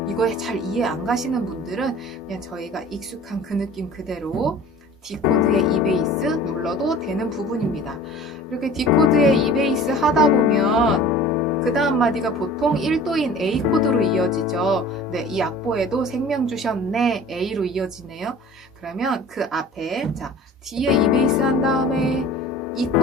이거 잘 이해 안 가시는 분들은 그냥 저희가 익숙한 그 느낌 그대로 D 코드의 E 베이스 눌러도 되는 부분입니다. 이렇게 D 코드의 E 베이스 하다 보면 그 다음 마디가 보통 1도인 A 코드로 이어지죠. 네, 이 악보에도 생명 주셨네 A로 이어지네요. 그러면 그 앞에 자 D에 E 베이스 한 다음에 E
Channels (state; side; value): normal; both; correlation 0.43